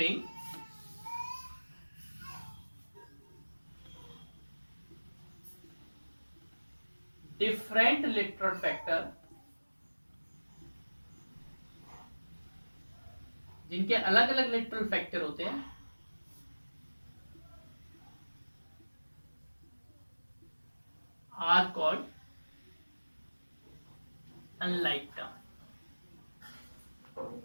different literal factor, जिनके अलग अलग लिटरल फैक्टर होते हैं, आर कॉल्ड अनलाइक टर्म।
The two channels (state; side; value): inverted; both; correlation -1.00